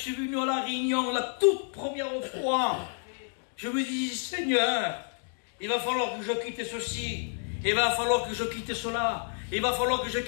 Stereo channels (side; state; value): right; silent; 58 dB below the other